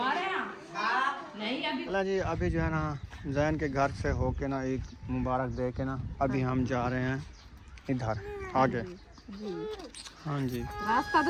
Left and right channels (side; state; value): both; identical; correlation 1.00